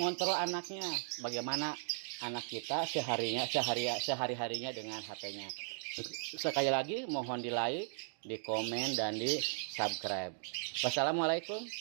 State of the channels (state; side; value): silent; left; digital silence